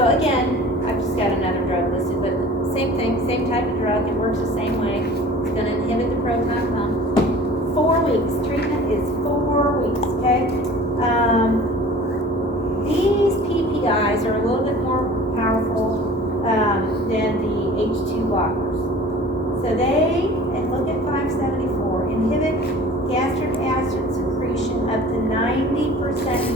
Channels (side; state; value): both; normal; correlation 0.44